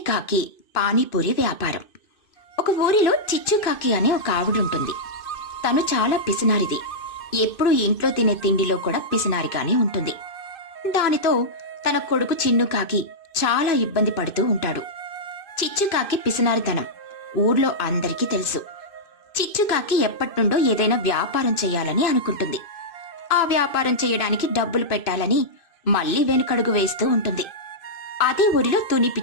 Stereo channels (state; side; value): late; right; 2.6 ms